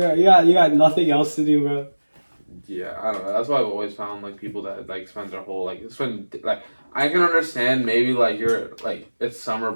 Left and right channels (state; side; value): inverted; both; correlation -1.00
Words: got nothing else to do, bro. Yeah, I don't know. That's why I've always found like people that like spend their whole like I can understand maybe like you're like it's summer